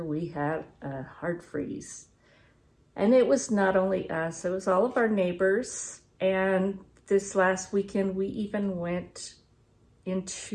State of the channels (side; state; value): both; identical; correlation 1.00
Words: we had a hard freeze. And it was not only us, it was all of our neighbors. And this last weekend, we even went